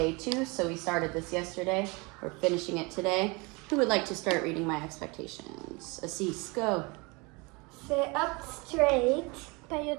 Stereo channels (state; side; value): quieter; left; 27.4 dB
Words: 2. So we started this yesterday. We're finishing it today. Who would like to start reading my expectations? Assis, go. Sit up straight. Pay